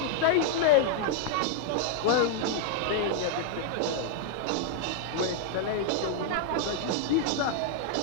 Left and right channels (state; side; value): different; both; correlation -0.01